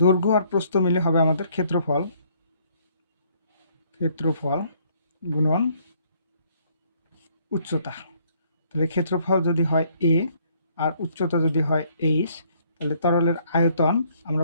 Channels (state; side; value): inverted; both; correlation -0.65